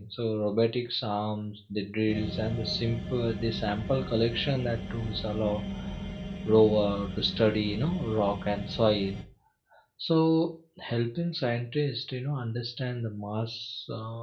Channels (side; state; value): both; identical; correlation 1.00